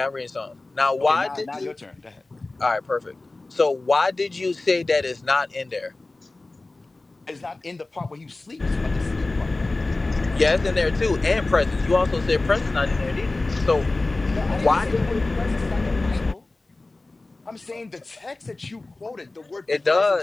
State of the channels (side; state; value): right; quieter; 3.1 dB